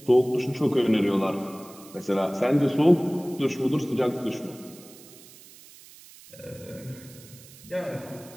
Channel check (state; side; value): noise; right; hiss, 21 dB below the sound